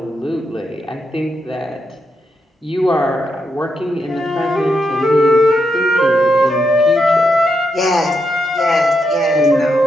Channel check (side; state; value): both; normal; correlation 0.82